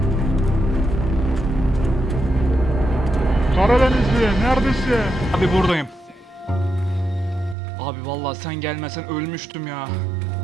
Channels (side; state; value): left; drops out; at 7.6 s